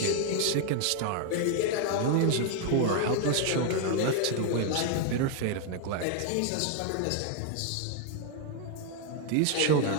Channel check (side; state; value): both; different; correlation 0.00